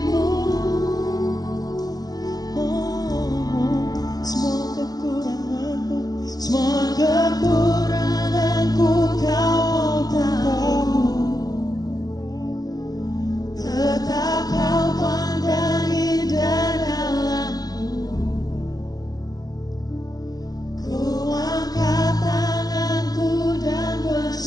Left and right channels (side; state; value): right; late; 0.19 ms